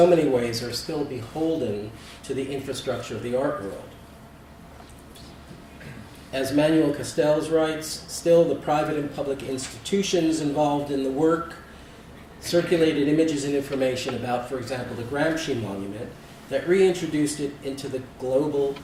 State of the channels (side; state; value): both; identical; correlation 1.00